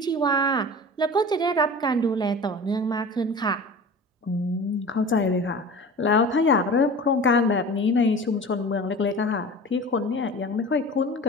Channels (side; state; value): both; normal; correlation 0.37